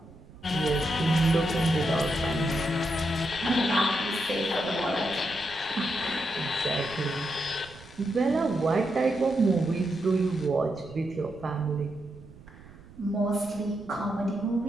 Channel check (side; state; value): right; noise; rumble, 20 dB below the sound